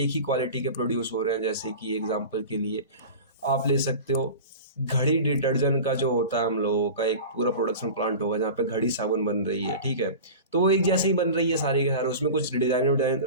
ही क्वालिटी के प्रोड्यूस हो रहे हैं। जैसे कि एग्जांपल के लिए आप ले सकते हो, घड़ी डिटर्जेंट का जो होता है हम लोगों का एक पूरा प्रोडक्शन प्लांट होगा जहाँ पे घड़ी साबुन बन रही है, ठीक है। तो वो एक जैसे ही बन रही है सारे के सारे, उसमें कुछ डिजाइन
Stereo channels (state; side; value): inverted; both; correlation -0.34